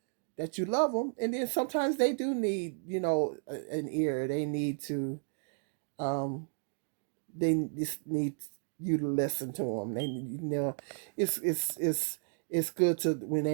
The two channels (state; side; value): silent; left; digital silence